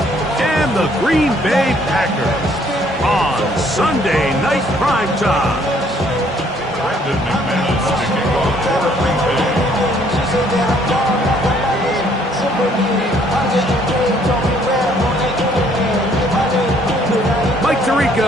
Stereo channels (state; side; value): normal; both; correlation 0.63